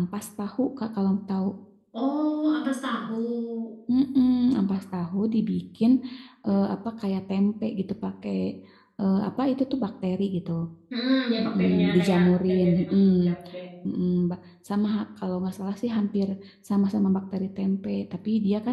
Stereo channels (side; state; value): both; identical; correlation 1.00